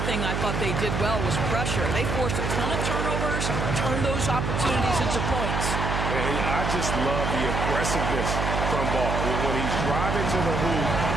thing I thought they did well was pressure. They forced a ton of turnovers, turned those opportunities into points. I just love the aggressiveness from Ball. When he's driving to the hoop,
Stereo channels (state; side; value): noise; right; hum, 1 dB below the sound